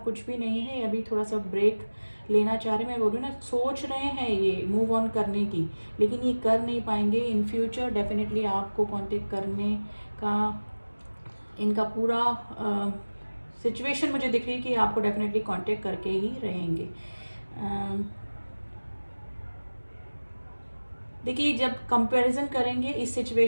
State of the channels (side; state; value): both; inverted; correlation -1.00